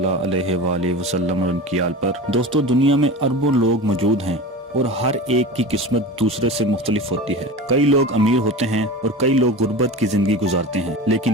अलैहि वालैहि वसल्लम और उनकी आल पर। दोस्तों, दुनिया में अरबों लोग मौजूद हैं और हर एक की किस्मत दूसरे से मुख्तलिफ होती है। कई लोग अमीर होते हैं और कई लोग गुर्बत की जिंदगी गुजारते हैं।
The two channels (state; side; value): normal; both; correlation 0.31